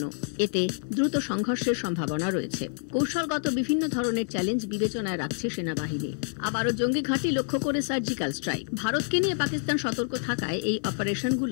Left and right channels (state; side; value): silent; right; 60 dB below the other